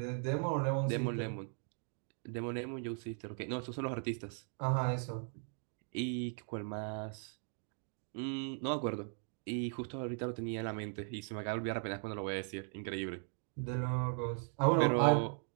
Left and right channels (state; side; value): silent; left; 52 dB below the other